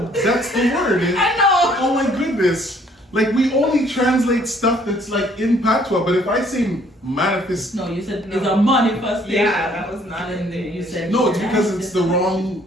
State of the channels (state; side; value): normal; both; correlation 0.62